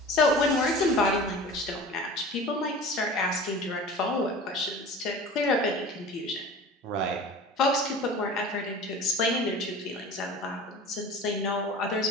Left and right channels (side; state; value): both; normal; correlation 0.38